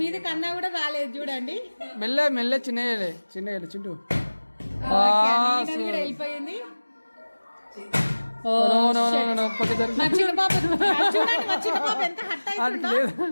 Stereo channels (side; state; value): both; inverted; correlation -1.00